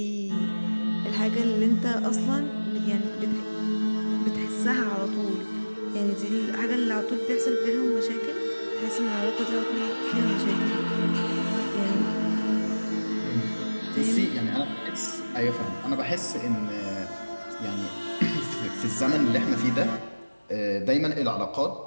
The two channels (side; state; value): both; inverted; correlation -1.00